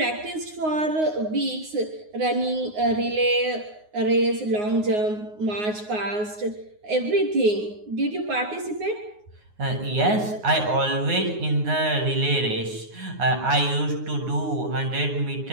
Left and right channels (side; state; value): left; late; 9.6 ms